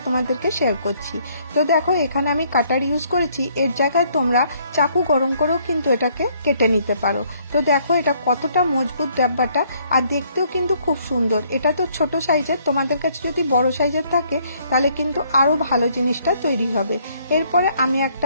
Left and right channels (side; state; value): both; inverted; correlation -0.66